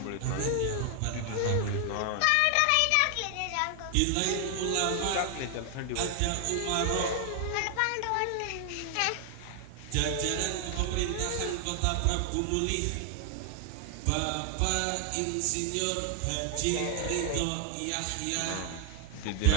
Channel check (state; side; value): different; both; correlation 0.00